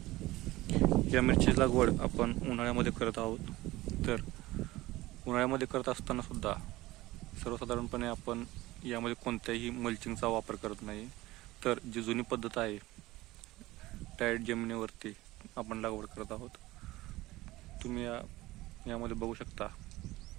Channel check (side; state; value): left; quieter; 18.4 dB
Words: या मिरचीची लागवड आपण उन्हाळ्यामध्ये करत आहोत. तर उन्हाळ्यामध्ये करत असताना सुद्धा सर्वसाधारणपणे आपण यामध्ये कोणत्याही मल्चिंगचा वापर करत नाही. तर जी जुनी पद्धत आहे, टाईट जमिनीवरती आपण लागवड करत आहोत. तुम्ही यामध्ये बघू शकता,